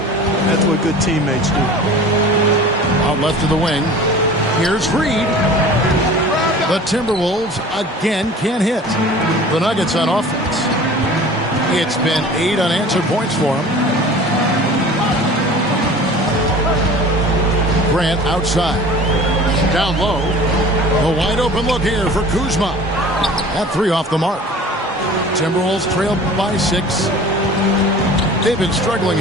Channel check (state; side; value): normal; both; correlation 0.43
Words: That's what good teammates do. Out left to the wing. Here's Reed. The Timberwolves again can't hit. The Nuggets on offense. It's been 8 unanswered points for them. Grant outside. Down low. A wide open look here for Kuzma. That 3 off the mark. Timberwolves trailed by 6. They've been struggling